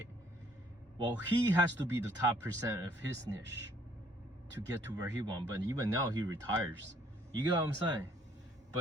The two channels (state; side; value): normal; both; correlation 0.62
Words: Well, he has to be the top % of his niche to get to where he wants. But even now, he retires. You get what I'm saying?